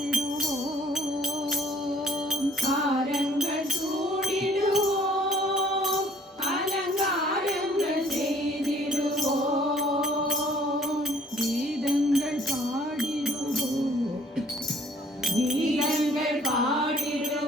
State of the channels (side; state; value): both; normal; correlation 0.58